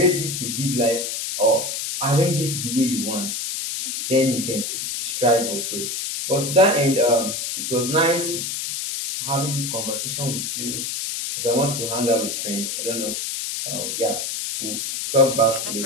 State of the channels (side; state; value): left; noise; hiss, 3 dB below the sound